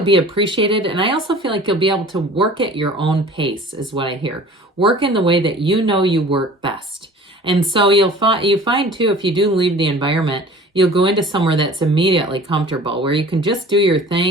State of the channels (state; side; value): normal; both; correlation 0.44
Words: be appreciated. And I also feel like you'll be able to work at your own pace, is what I hear. Work in the way that you know you work best. And so you find too, if you do leave the environment, you'll go into somewhere that's immediately comfortable, where you can just do your